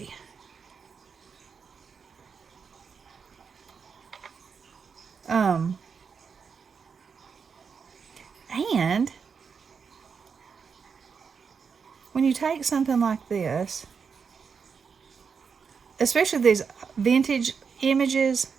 And when you take something like this, especially these vintage images,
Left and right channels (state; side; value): quieter; left; 6.0 dB